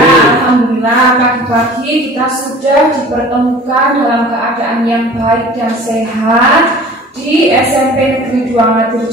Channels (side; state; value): both; normal; correlation 0.44